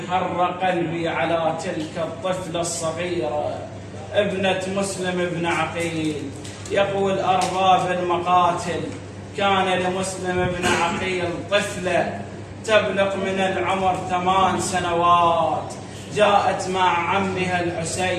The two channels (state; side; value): identical; both; correlation 1.00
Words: حر قلبي على تلك الطفلة الصغيرة ابنة مسلم بن عقيل. يقول أرباب المقاتل: كان لمسلم بن عقيل طفلة تبلغ من العمر 8 سنوات، جاءت مع عمها